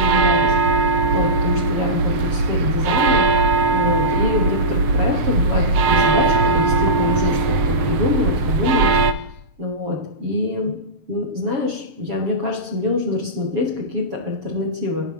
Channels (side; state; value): left; late; 7.8 ms